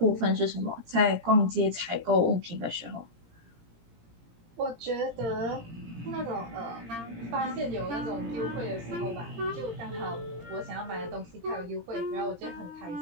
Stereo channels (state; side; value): late; left; 17 ms